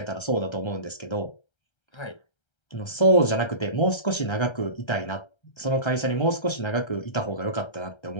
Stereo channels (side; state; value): right; late; 1.3 ms